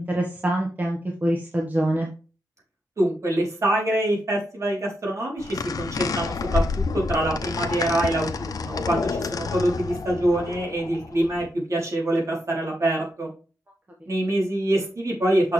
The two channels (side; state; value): both; normal; correlation 0.83